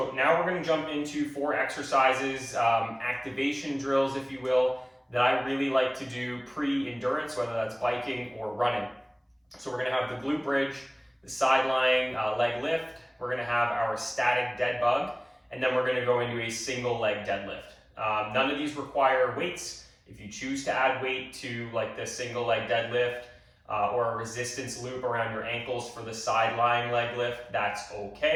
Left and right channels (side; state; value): both; identical; correlation 1.00